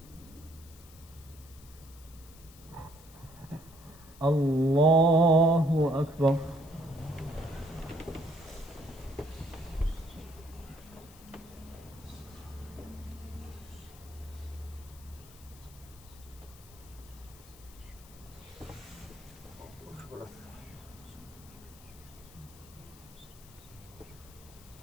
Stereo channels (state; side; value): noise; left; hiss, 21 dB below the sound